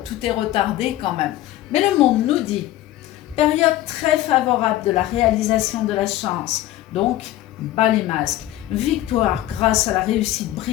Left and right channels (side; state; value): right; quieter; 14.6 dB